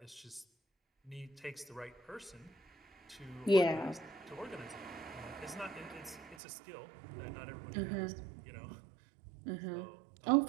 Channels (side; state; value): left; drops out; at 6.4 s